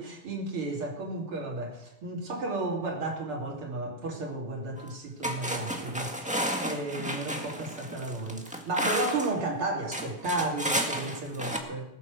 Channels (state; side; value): normal; both; correlation -0.02